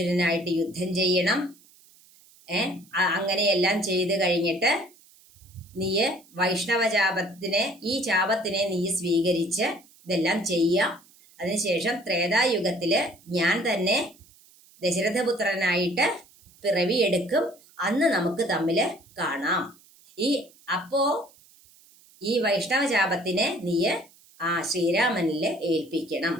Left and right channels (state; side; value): noise; right; hiss, 27 dB below the sound